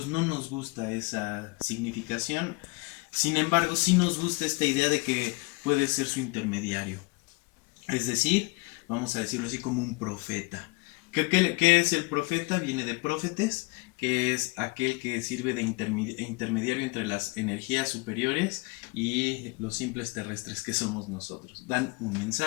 no nos gusta esa significación. Sin embargo, sí nos gusta esta idea de que puede ser su intermediario. Es decir, vamos a decirlo así, como un profeta. ¿Qué es el profeta? Viene de profetes, que es aquel que sirve de intermediario entre las energías superiores y los simples terrestres que somos nosotros. Dan un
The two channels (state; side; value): quieter; right; 26.4 dB